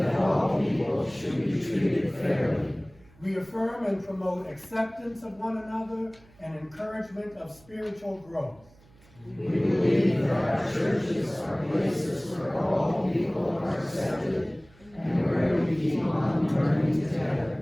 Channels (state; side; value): noise; right; hum, 27 dB below the sound